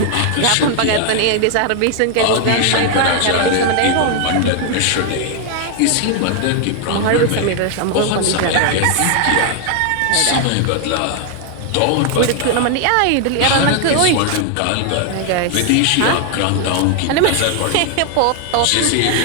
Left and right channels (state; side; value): different; both; correlation 0.00